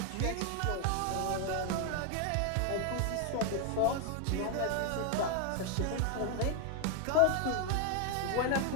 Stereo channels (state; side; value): different; both; correlation 0.00